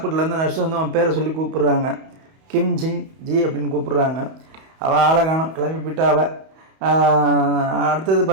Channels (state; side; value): late; left; 31 ms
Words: நர்ஸ் வந்து அவன் பேரை சொல்லி கூப்பிட்றாங்க. கிம் ஜிங் ஜி அப்படின்னு கூப்பிட்றாங்க. அவள் ஆளை காணோம், கிளம்பி போயிட்டா அவள். அடுத்தது